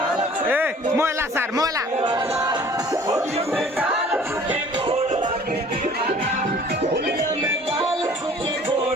ए मोला सर मोला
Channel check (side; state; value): both; normal; correlation 0.51